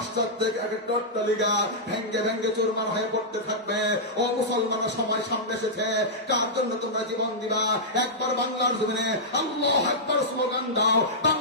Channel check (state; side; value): normal; both; correlation -0.11